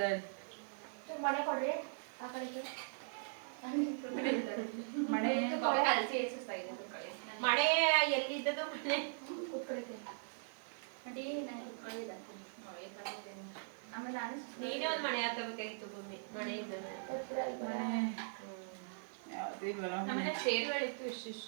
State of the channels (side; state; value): left; silent; 51 dB below the other